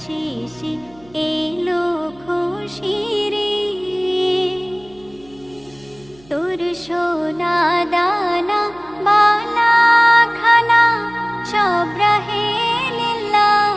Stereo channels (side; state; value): right; noise; hum, 27 dB below the sound